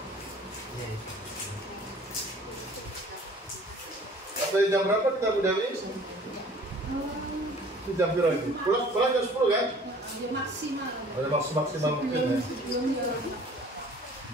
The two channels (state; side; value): normal; both; correlation 0.51